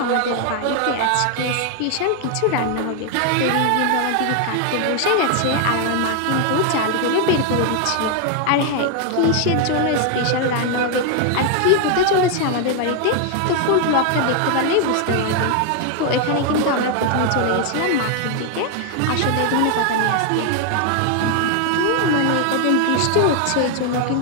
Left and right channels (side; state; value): both; different; correlation 0.00